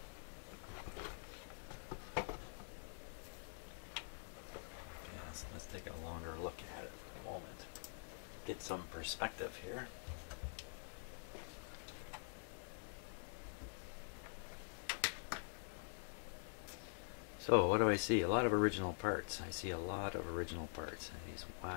Let's take a longer look at it for a moment. Get some perspective here. So what do I see? A lot of original parts. I see a lot of original parts. And these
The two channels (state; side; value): silent; right; digital silence